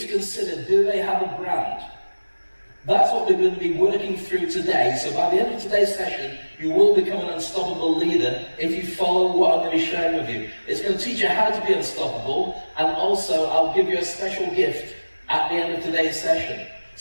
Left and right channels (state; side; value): inverted; both; correlation -1.00